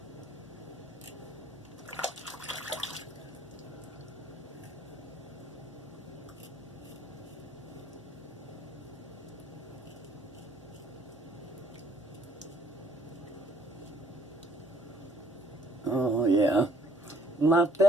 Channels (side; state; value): both; normal; correlation 0.62